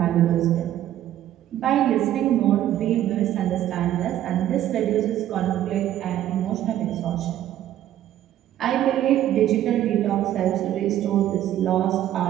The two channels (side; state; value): left; quieter; 12.2 dB